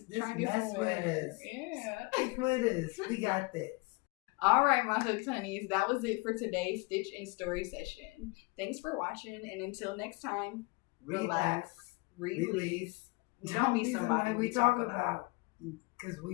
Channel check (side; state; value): right; quieter; 26.8 dB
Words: mess with us. Yeah. Stick with us. We got this. All right, my hooked honeys. That was it for today's Stitch and Story session. Thanks for watching. And until next time, Relax. Release. Don't be somebody we talk about. Because